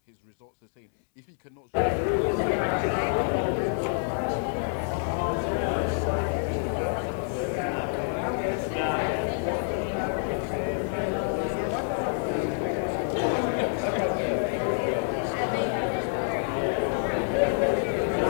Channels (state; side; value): silent; right; 60 dB below the other